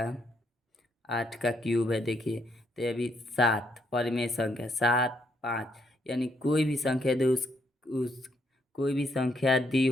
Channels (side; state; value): both; normal; correlation 0.74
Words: का क्यूब है। देखिए, तो ये भी 7 परिमेय संख्या, 7, 5, यानी कोई भी संख्या दे उस कोई भी संख्या दी